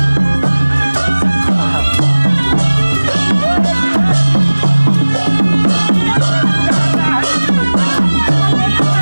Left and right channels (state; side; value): inverted; both; correlation -1.00